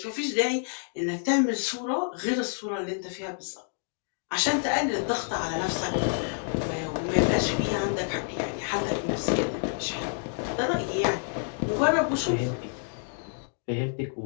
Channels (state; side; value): silent; right; 59 dB below the other